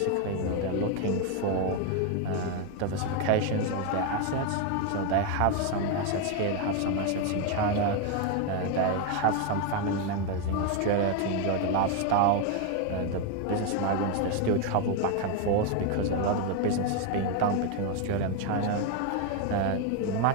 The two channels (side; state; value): both; different; correlation 0.01